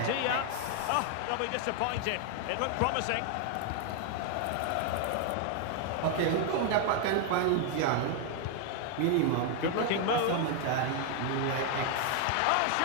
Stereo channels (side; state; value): both; different; correlation 0.00